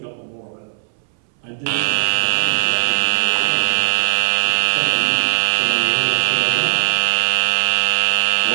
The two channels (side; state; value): left; silent; 62 dB below the other